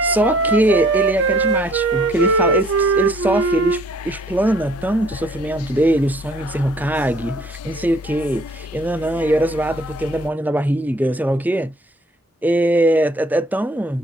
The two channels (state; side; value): normal; both; correlation 0.59